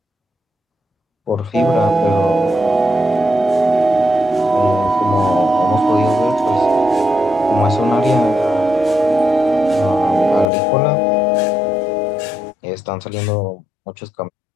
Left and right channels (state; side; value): drops out; right; at 10.5 s